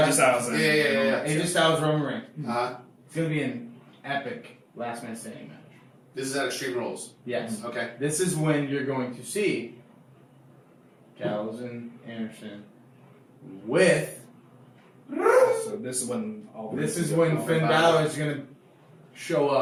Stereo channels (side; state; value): both; identical; correlation 1.00